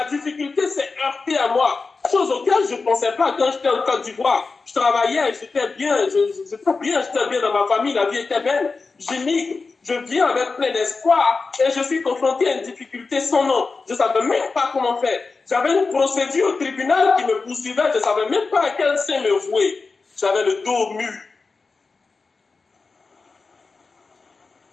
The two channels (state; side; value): quieter; right; 4.2 dB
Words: difficulté s'est heurtée à moi. Chose auquel je ne pensais pas quand j'étais en Côte d'Ivoire. Je travaillais, j'étais bien dans ma famille, la vie était belle. J'émigre, je viens avec plein d'espoir et je suis confronté à une difficulté sans nom. Je ne savais même pas comment faire. J'avais une procédure au tribunal qui me poursuivait, je ne savais même pas à quel sein me vouer. J'avais le dos au mur.